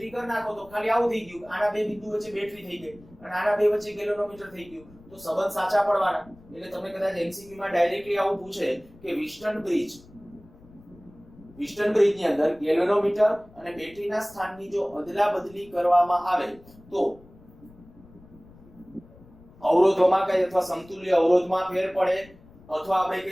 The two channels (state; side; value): noise; left; rumble, 24 dB below the sound